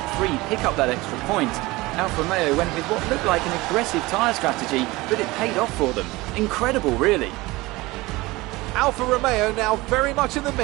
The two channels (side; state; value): left; quieter; 21.0 dB